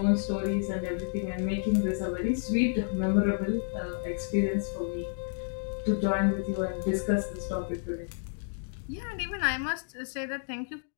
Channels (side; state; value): right; silent; digital silence